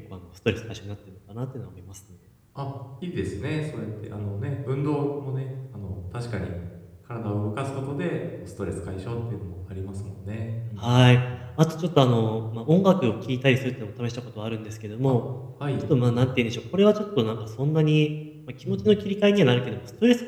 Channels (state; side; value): identical; both; correlation 1.00